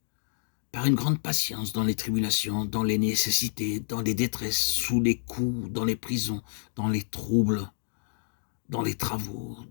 Par une grande patience dans les tribulations, dans les nécessités, dans les détresses, sous les coups, dans les prisons, dans les troubles, dans les travaux,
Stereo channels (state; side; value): silent; right; digital silence